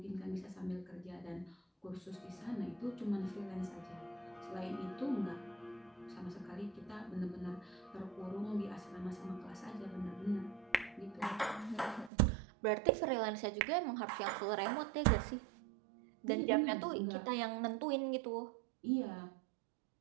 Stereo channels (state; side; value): drops out; left; at 12.1 s